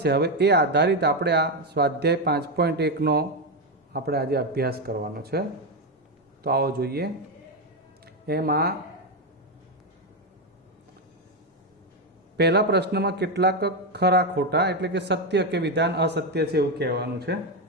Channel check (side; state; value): both; normal; correlation 0.08